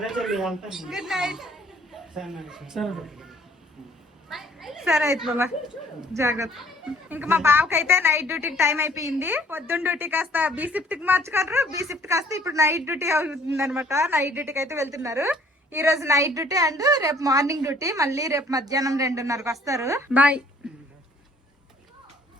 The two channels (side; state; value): both; normal; correlation 0.58